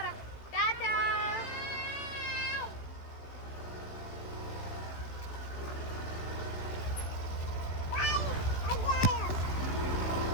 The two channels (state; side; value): late; right; 16 ms